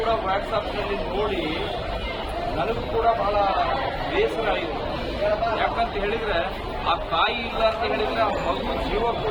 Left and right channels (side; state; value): both; identical; correlation 1.00